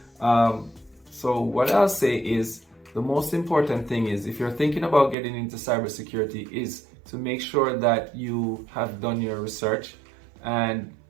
So what I'll say is, the most important thing is, if you're thinking about getting into cybersecurity, is to make sure that you have done your research and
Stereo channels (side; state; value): left; drops out; at 5.2 s